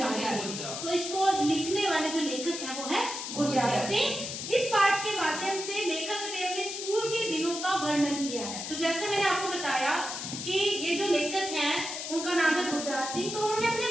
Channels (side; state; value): left; noise; hiss, 6 dB below the sound